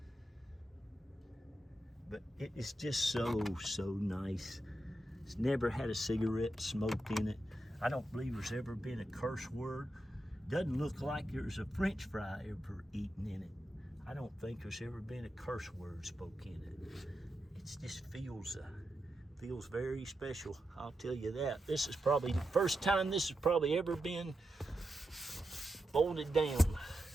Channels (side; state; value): both; normal; correlation 0.87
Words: But it is just so nice. It's never had a cigarette smoked in it. I don't believe there's ever been a curse word. Doesn't look like there's a French fry ever eaten in it. I don't think there's ever been a curse word spoken in it. It just feels very special, I'll tell you that. This is probably the first time this has probably ever been folded down.